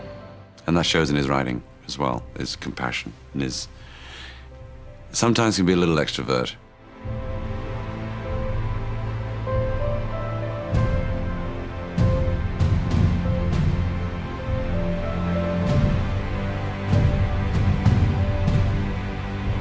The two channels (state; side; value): identical; both; correlation 1.00